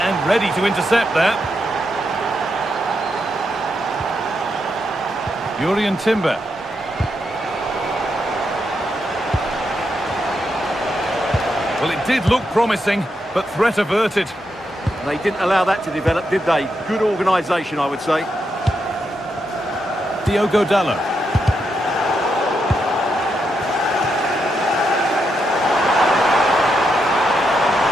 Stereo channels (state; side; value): normal; both; correlation 0.82